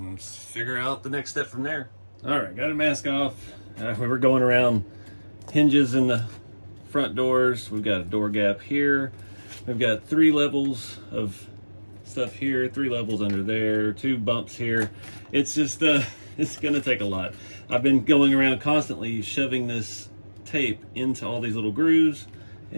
figure out the next step from there. All right, got a mask off. We're going around hinges in the front doors. We've got a door gap here. We've got 3 levels of stuff here, 3 levels under there, 2 bumps here. It's just, it's gonna take a lot. I've been going around constantly shoving this tape into all these little grooves,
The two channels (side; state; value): both; inverted; correlation -1.00